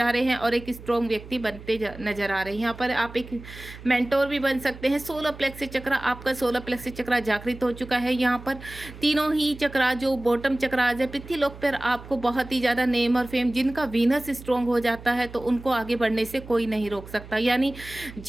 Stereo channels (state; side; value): noise; right; hum, 16 dB below the sound